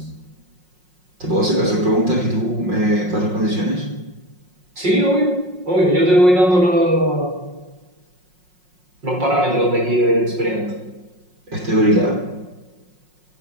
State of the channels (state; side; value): late; left; 5.5 ms